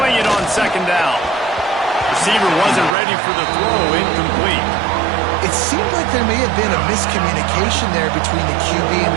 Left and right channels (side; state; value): left; drops out; at 3.0 s